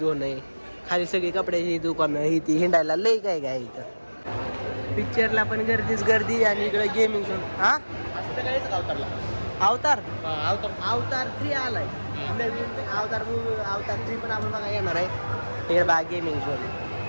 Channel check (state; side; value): inverted; both; correlation -1.00